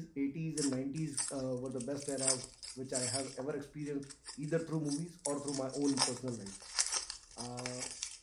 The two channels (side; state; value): both; identical; correlation 1.00